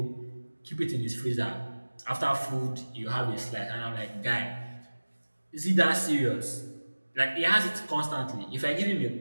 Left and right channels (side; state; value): both; inverted; correlation -1.00